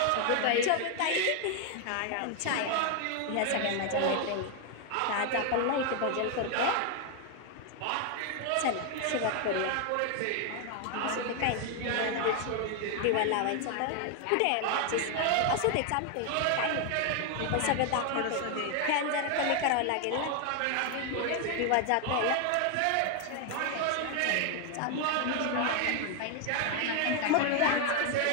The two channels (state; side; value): different; both; correlation 0.01